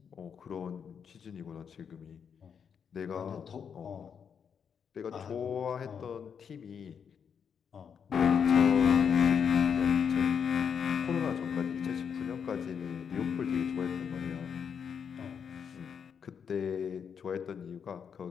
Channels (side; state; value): right; quieter; 7.1 dB